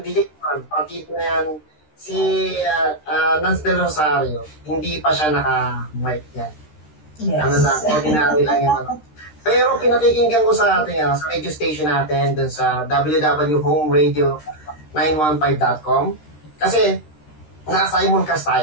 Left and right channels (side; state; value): right; late; 13 ms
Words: DJ Juan, partida na yan, si Nance Del Rosario, hindi pa siya naka-mic yan. Yes. Ano lang, ordinary lang yun. Pero pinakikinggan ko sa atin, sa radio station natin, dun sa www.homeradio915.com, kasi naka-simulcast